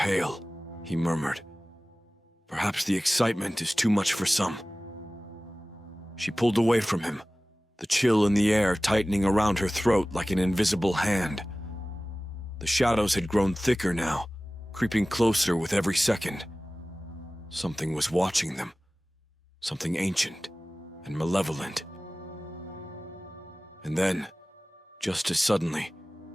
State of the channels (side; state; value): both; normal; correlation 0.97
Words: he murmured. "Perhaps the excitement is too much for some." She pulled away from him, the chill in the air tightening around her throat like an invisible hand. The shadows had grown thicker now, creeping closer with every second. Something was watching them, something ancient and malevolent. And then, just as suddenly,